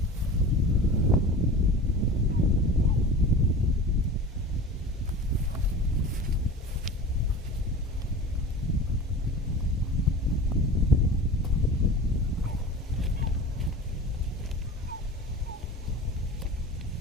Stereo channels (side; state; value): both; normal; correlation 0.36